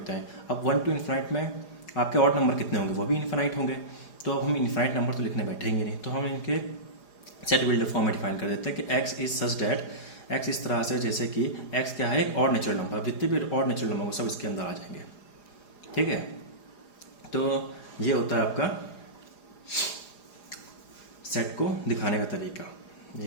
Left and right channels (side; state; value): right; late; 4.9 ms